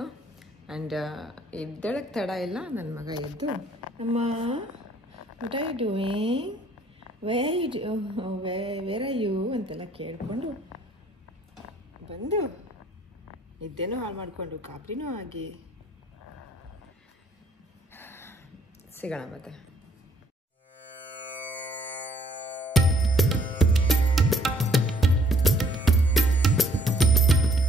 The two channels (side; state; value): both; normal; correlation 0.62